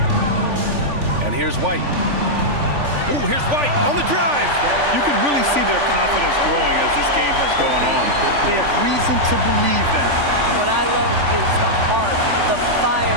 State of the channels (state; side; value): late; left; 3.5 ms